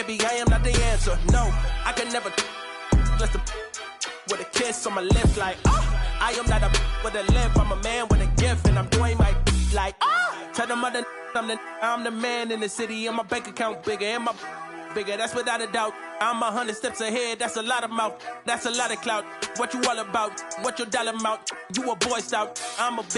I am not the answer. No, I can never just with a kiss on my lips like I am not a with a lip, I'm a man with a gift, and I'm doing my like tell them other I'm the man in the city, and my bank account bigger, and my bigger, that's without a doubt. I'm 100 steps ahead, that's a lot of mouth, that's a lot of clout. What you all about? What your dollar amount? You a Boy Scout, I'm a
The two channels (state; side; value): identical; both; correlation 1.00